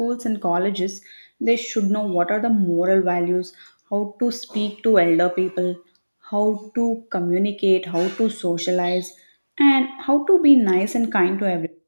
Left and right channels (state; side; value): inverted; both; correlation -1.00